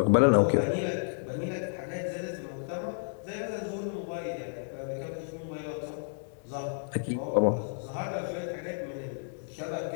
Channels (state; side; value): silent; right; digital silence